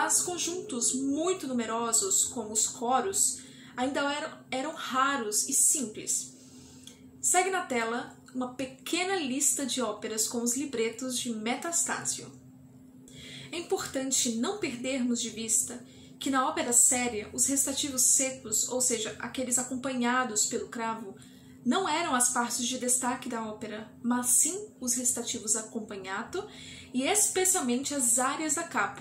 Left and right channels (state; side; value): identical; both; correlation 1.00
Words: conjuntos muito numerosos, como os coros, ainda eram raros e simples. Segue na tela uma pequena lista de óperas com os libretos de Metastasio. É importante não perdermos de vista que na ópera séria os recitativos secos, ou seja, aqueles acompanhados pelo cravo, não eram as partes de destaque da ópera, mas sim os recitativos acompanhato e especialmente as áreas da